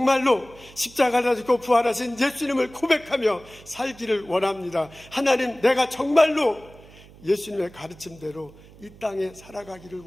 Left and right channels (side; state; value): right; noise; hum, 22 dB below the sound